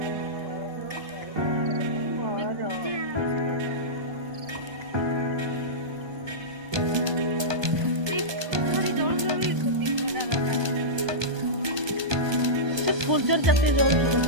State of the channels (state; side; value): late; left; 1.2 ms